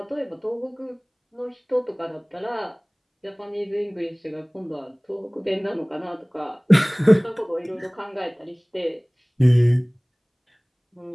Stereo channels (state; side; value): identical; both; correlation 1.00